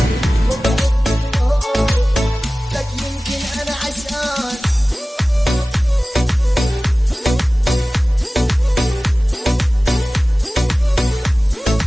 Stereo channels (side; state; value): both; normal; correlation 0.97